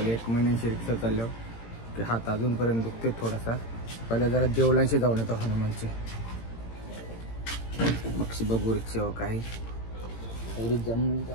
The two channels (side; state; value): right; late; 18 ms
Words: 1 महिन्याची रिक्षा चाललो की हात अजूनपर्यंत दुखते थोडासा. पहिला जरा देवळांशी जाऊन येतो हनुमानची. मग बघू रिक्षावर काही तेवढी